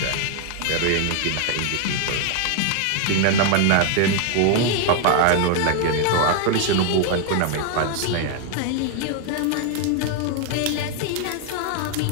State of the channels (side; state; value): both; different; correlation 0.00